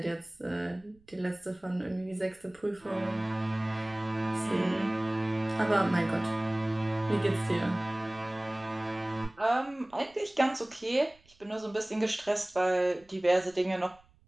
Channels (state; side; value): noise; right; rumble, 30 dB below the sound